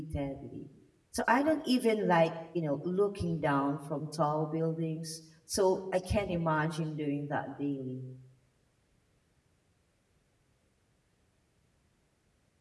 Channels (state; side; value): identical; both; correlation 1.00